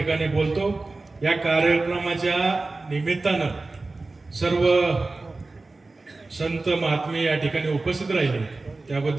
बोलतो. या कार्यक्रमाच्या निमित्तानं सर्व संत महात्मे या ठिकाणी उपस्थित राहिले,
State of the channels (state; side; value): quieter; left; 3.4 dB